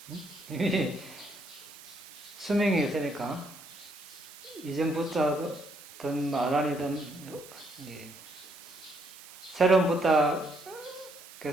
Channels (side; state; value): right; noise; hiss, 18 dB below the sound